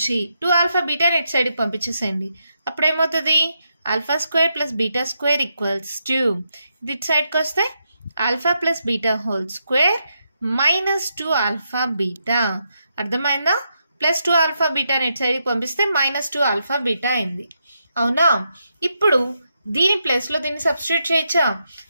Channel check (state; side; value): inverted; both; correlation -0.82